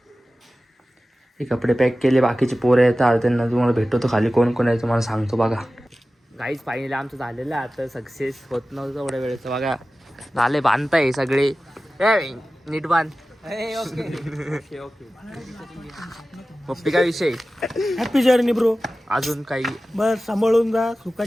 हे कपडे पॅक केले, बाकीचे पोरं येतात त्यांना तुम्हाला भेटतो खाली कोण कोण आहे तुम्हाला सांगतो. बघा गाईज, फायनली आमचं झालेलं आहे आता. सक्सेस होत नव्हतं एवढ्या वेळेचं. बघा झाले, बांधताय सगळे. नीट बांध. पप्पी काय विषय? Happy journey bro. अजून काही बस सांभाळून जा,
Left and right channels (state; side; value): normal; both; correlation 0.95